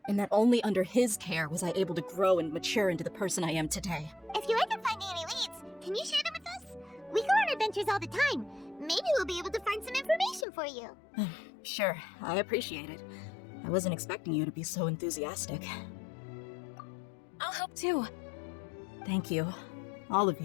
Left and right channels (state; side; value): drops out; right; at 10.5 s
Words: And that only under his care was I able to grow and mature into the person I am today. If you're ever finding any leads, can you share them with us? We go on adventures all the time. Maybe we'll be able to find some information for you. Sure, I appreciate it. I wasn't expecting you to be so enthusiastic. I'll help too. Thank you. All of